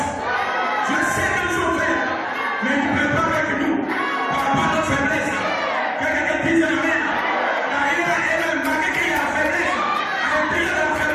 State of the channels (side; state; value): both; identical; correlation 1.00